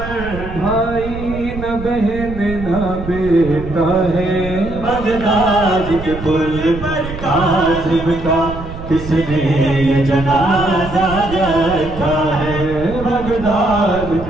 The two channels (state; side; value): noise; right; rumble, 10 dB below the sound